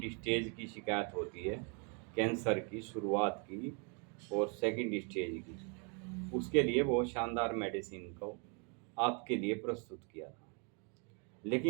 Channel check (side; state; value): left; quieter; 35.6 dB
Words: स्टेज की शिकायत होती है, कैंसर की शुरुआत की और सेकंड स्टेज की, उसके लिए वो शानदार मेडिसिन को आपके लिए प्रस्तुत किया था।